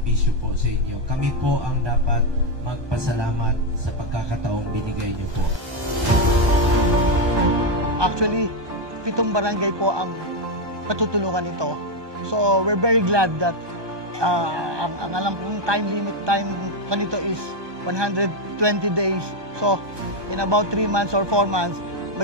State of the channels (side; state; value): left; late; 1.2 ms